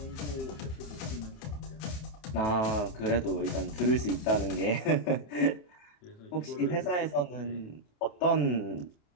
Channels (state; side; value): late; right; 28 ms